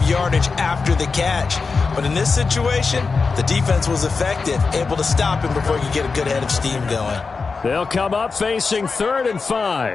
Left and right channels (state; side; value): quieter; right; 4.6 dB